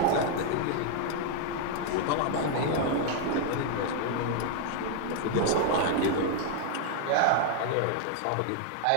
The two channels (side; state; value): both; different; correlation 0.00